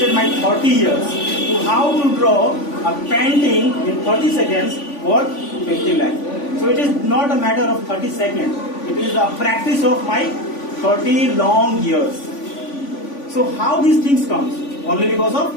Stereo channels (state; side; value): late; right; 3.5 ms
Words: my 30 years to how to draw a painting in 30 seconds worth 50 lakh. So it is not a matter of 30 seconds. It is a practice of my 30 long years. So how these things comes? Only because of